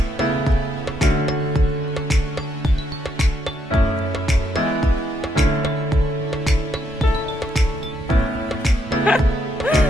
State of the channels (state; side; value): normal; both; correlation 0.75